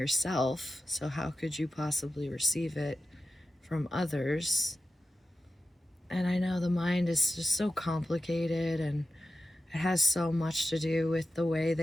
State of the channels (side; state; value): both; normal; correlation 0.92